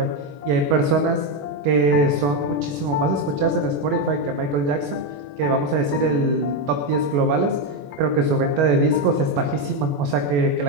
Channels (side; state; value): left; late; 21 ms